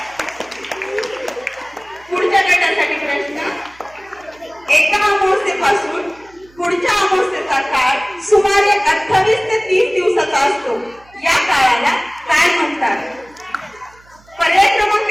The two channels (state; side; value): noise; right; hum, 28 dB below the sound